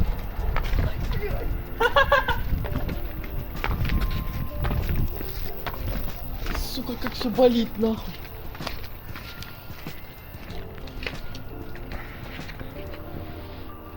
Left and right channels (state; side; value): identical; both; correlation 1.00